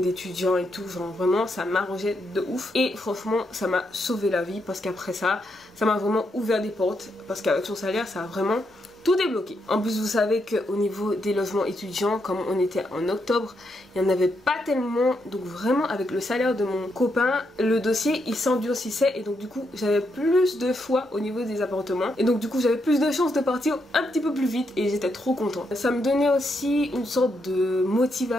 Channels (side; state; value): both; normal; correlation 0.80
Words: et tout, genre vraiment ça m'arrangeait de ouf et franchement ça m'a sauvé la vie parce qu'après ça m'a vraiment ouvert des portes parce qu'avec son salaire ça a vraiment tout débloqué. En plus vous savez qu'au niveau des logements étudiants, comme on était en octobre, il n'y en avait pas tellement, donc vraiment avec le salaire de mon copain, le dossier il s'endurcissait et donc du coup j'avais plus de choix au niveau des appartements et donc du coup j'avais plus de chances de partir un petit peu plus vite et j'étais trop contente. Ça me donnait aussi une sorte de